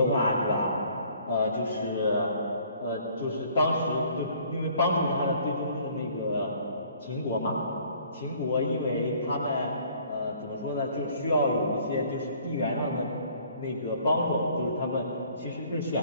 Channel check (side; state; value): both; inverted; correlation -0.57